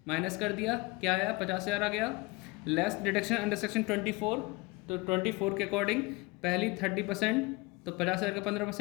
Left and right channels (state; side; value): quieter; right; 24.0 dB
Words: माइनस कर दिया, क्या आया? 50,000 आ गया। लेस डिडक्शन अंडर सेक्शन 24, तो 24 के अकॉर्डिंग पहली 30%, तो 50,000 का